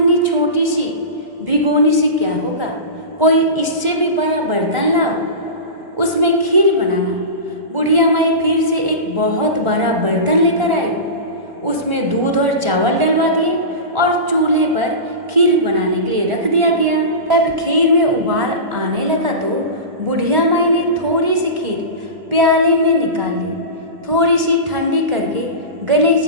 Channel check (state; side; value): late; left; 1.4 ms